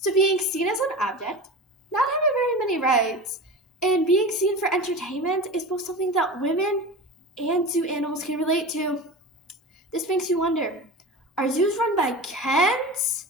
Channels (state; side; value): normal; both; correlation 0.30